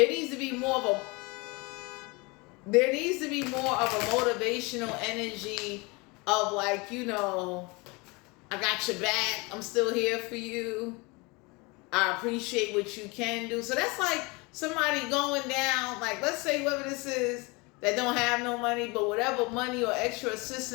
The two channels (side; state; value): right; quieter; 26.7 dB